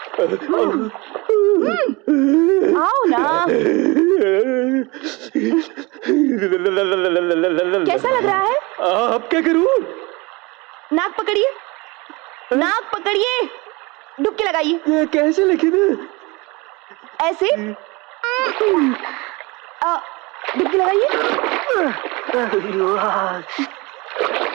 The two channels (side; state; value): left; quieter; 25.1 dB